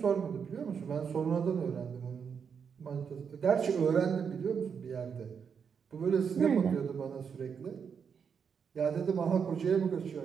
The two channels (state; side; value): quieter; left; 6.7 dB